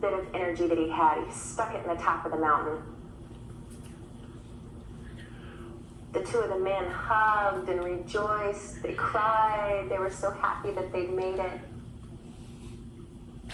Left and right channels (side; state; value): both; identical; correlation 1.00